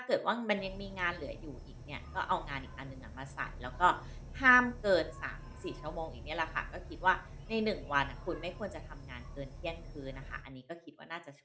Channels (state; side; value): identical; both; correlation 1.00